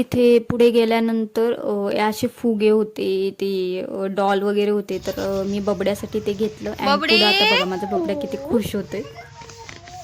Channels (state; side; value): identical; both; correlation 1.00